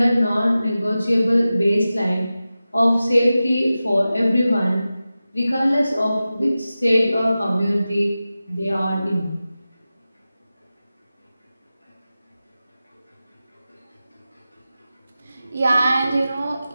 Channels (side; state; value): both; inverted; correlation -0.94